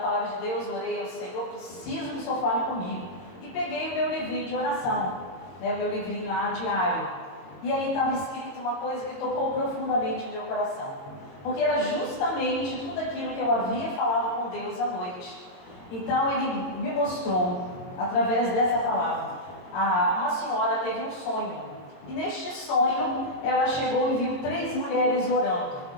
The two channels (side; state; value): right; late; 22 ms